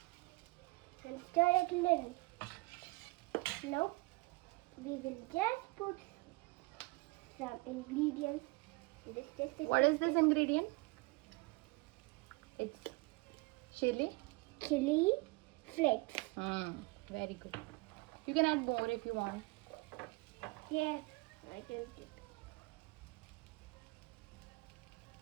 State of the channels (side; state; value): left; quieter; 24.7 dB